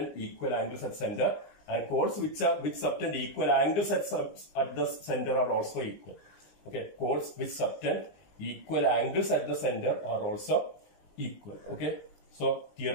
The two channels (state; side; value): late; right; 20 ms